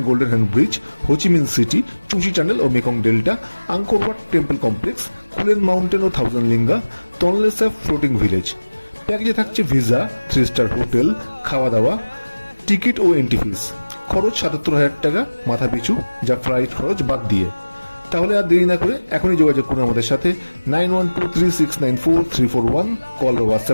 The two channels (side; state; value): both; inverted; correlation -1.00